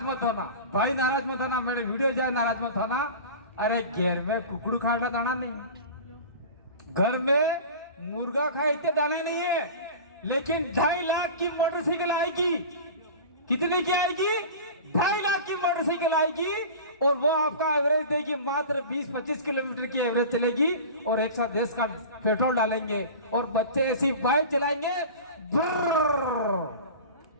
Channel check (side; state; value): both; inverted; correlation -0.35